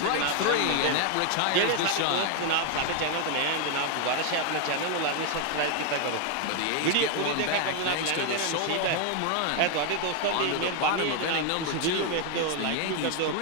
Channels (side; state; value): both; different; correlation 0.01